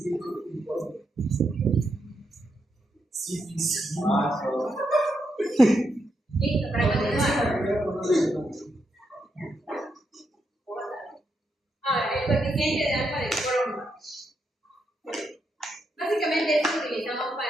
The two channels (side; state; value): both; normal; correlation 0.82